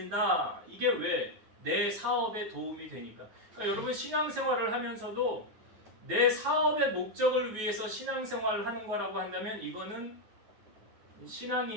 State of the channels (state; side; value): late; left; 9.3 ms